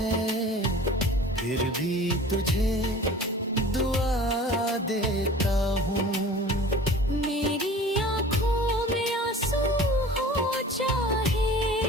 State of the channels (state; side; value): normal; both; correlation 0.43